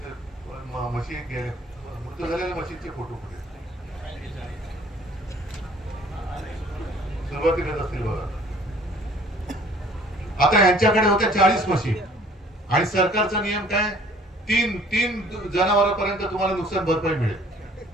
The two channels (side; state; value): both; normal; correlation 0.54